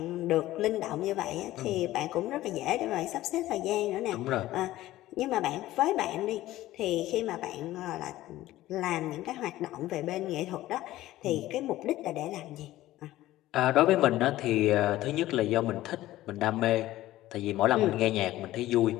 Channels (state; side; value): quieter; right; 15.6 dB